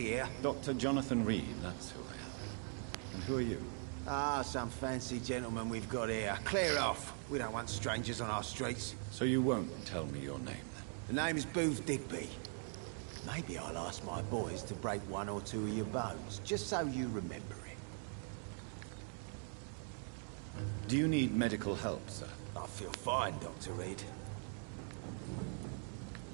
here? Dr. Jonathan Reed, that's who I am. And who are you? Ah, some fancy gentleman we've got here. Clear off. We don't want strangers on our streets. So you won't tell me your name, then? The name is Booth Digby. Maybe I'll ask my boys to break one or two of your bones, just so you remember it. Do you need medical help, sir? I feel fine, Dr. Reed.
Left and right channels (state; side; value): silent; left; 50 dB below the other